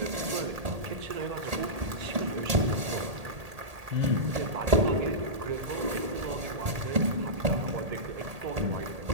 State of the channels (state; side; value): late; left; 1.8 ms